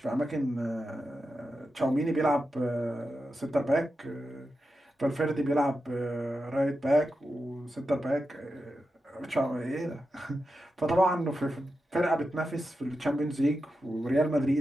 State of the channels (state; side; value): normal; both; correlation 0.89